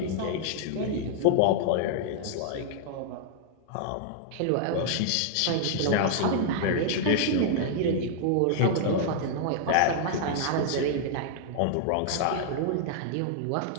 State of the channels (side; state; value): both; different; correlation -0.01